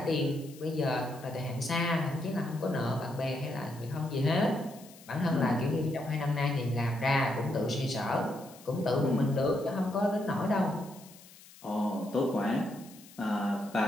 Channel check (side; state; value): left; noise; hiss, 21 dB below the sound